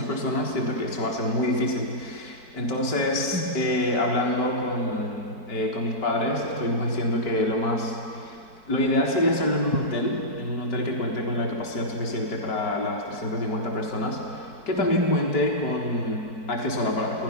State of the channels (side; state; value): right; late; 4.6 ms